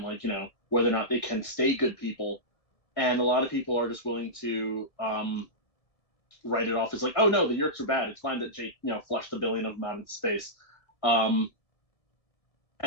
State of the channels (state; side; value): late; right; 1.7 ms